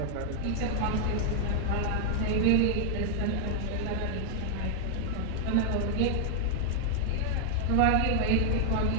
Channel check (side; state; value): both; different; correlation 0.00